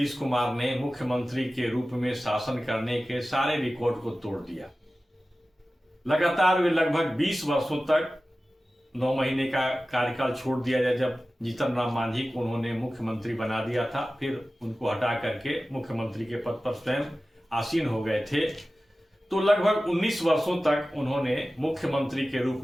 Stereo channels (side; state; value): both; normal; correlation 0.96